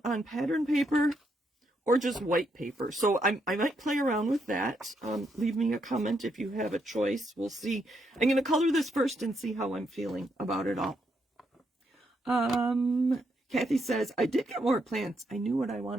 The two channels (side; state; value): both; normal; correlation 0.78